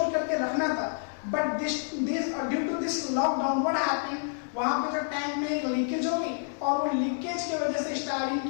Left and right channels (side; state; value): right; silent; 59 dB below the other